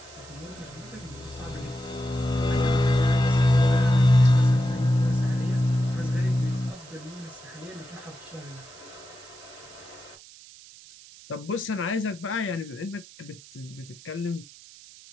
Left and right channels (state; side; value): noise; right; hiss, 21 dB below the sound